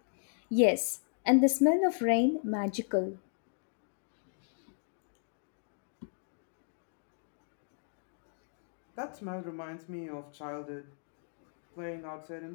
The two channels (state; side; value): silent; right; digital silence